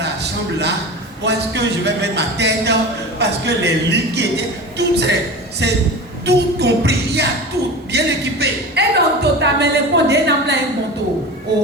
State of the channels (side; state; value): both; normal; correlation 0.31